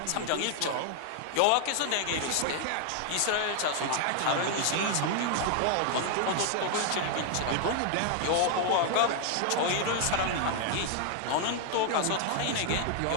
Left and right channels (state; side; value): different; both; correlation 0.00